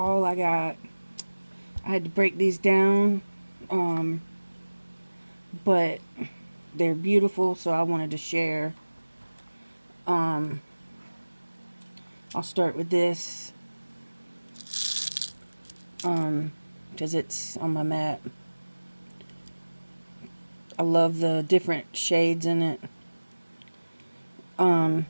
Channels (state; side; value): inverted; both; correlation -1.00